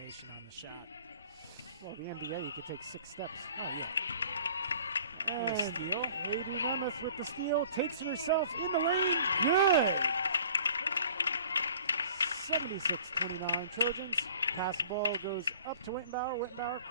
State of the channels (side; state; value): both; inverted; correlation -0.49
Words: on the shot. Well, the NBA, you could take 6 steps. Oh, yeah. And Steal. Haiti Nemeth with the steal, takes it herself in the lane. Good. 76-29 Trojans. Pass ball goes up to Wittenbauer. Wittenbauer